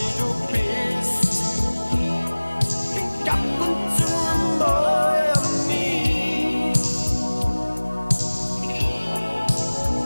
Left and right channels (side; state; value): both; inverted; correlation -1.00